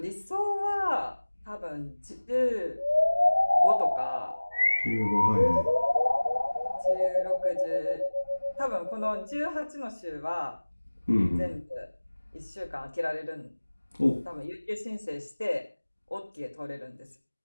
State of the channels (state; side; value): inverted; both; correlation -1.00